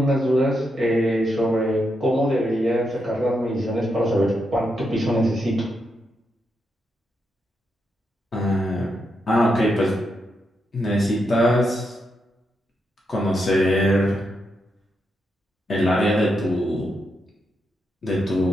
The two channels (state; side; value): normal; both; correlation 0.83